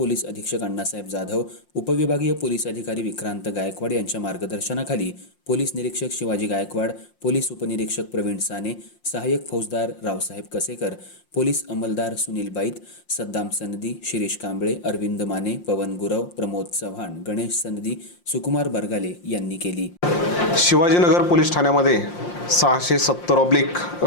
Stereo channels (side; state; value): right; late; 5.7 ms